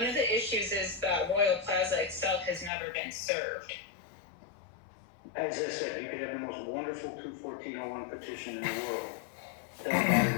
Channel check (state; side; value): drops out; right; at 2.7 s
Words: of the issues is that Royal Plaza itself has never been served. As I said, you could have the most wonderful 214-01 petition in the world. Doesn't matter